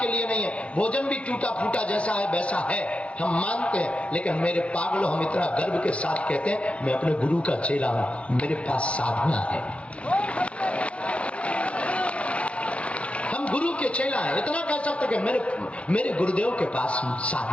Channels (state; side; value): late; right; 0.062 ms